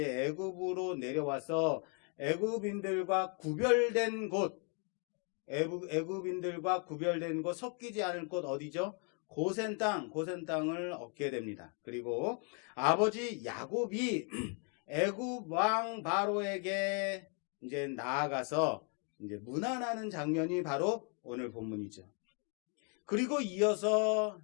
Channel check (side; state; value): right; quieter; 38.3 dB